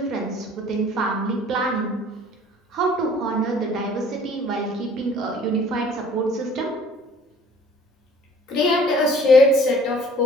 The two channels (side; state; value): both; normal; correlation 0.53